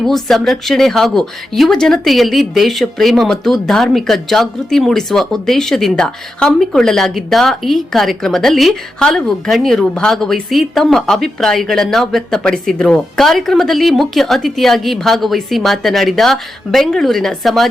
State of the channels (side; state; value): both; normal; correlation 0.88